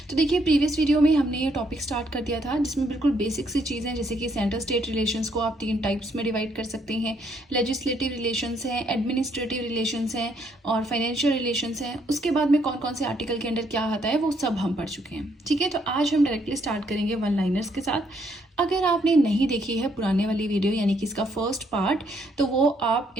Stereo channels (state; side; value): normal; both; correlation 0.71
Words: तो देखिए, प्रीवियस वीडियो में हमने ये टॉपिक स्टार्ट कर दिया था जिसमें बिल्कुल बेसिक सी चीज़ें, जैसे कि सेंटर स्टेट रिलेशंस को आप 3 टाइप्स में डिवाइड कर सकते हैं। लेजिस्लेटिव रिलेशंस हैं, एडमिनिस्ट्रेटिव रिलेशंस हैं और फाइनेंशियल रिलेशंस हैं। उसके बाद में कौन कौन से आर्टिकल के अंडर क्या आता है वो सब हम पढ़ चुके हैं। ठीक है, तो आज हम डायरेक्टली स्टार्ट करेंगे वन लाइनर्स के साथ। अगर आपने नहीं देखी है पुराने वाली वीडियो यानी कि इसका फर्स्ट पार्ट, तो वो आप